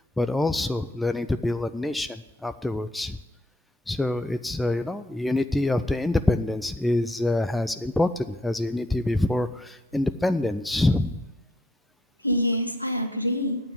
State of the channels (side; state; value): both; normal; correlation 0.69